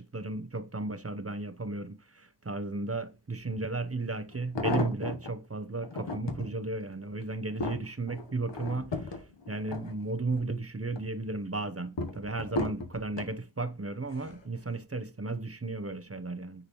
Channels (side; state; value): both; normal; correlation 0.38